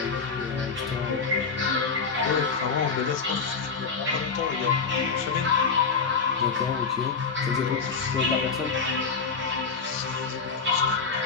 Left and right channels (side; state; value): right; quieter; 5.1 dB